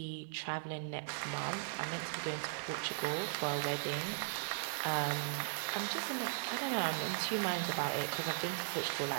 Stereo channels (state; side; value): silent; left; 52 dB below the other